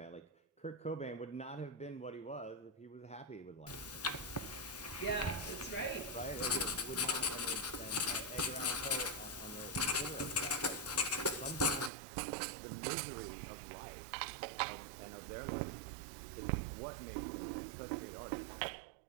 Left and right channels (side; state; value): left; drops out; at 11.9 s